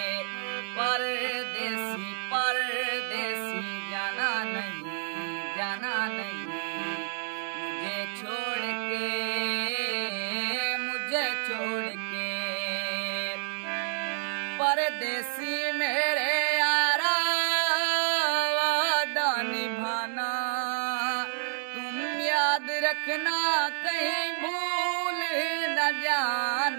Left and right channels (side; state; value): left; silent; 58 dB below the other